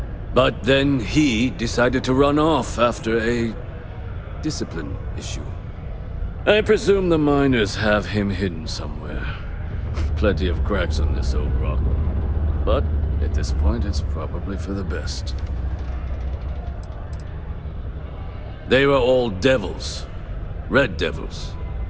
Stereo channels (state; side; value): identical; both; correlation 1.00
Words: But then he decided to run off after a discipline issue. I presume the miners have him hidden somewhere. Plenty of cracks on this old rock. But at this point, it's probably for the best. They were all devils. Red Devils.